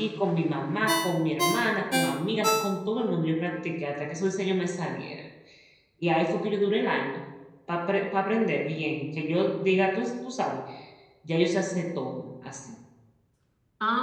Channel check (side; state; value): both; identical; correlation 1.00